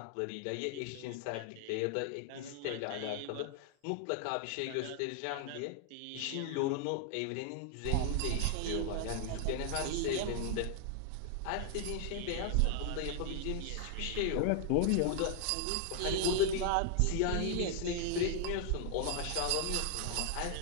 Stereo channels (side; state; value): both; different; correlation 0.00